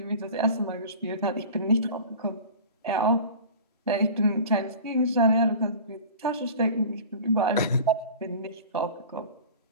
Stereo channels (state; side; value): inverted; both; correlation -0.38